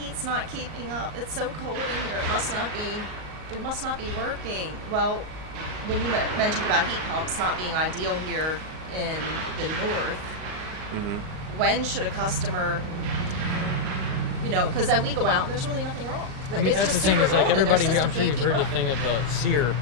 not keeping up. It's so cold in here. It must not be working. Well, when you mentioned about heat pumps not being ideal here in the north, when should a customer, because then we go out and there's really nothing wrong. I mean, It's that's the just thing super is like cold and their everybody, I'm system sure can't you've keep heard the up. thing of the SEER,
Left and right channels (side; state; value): left; late; 38 ms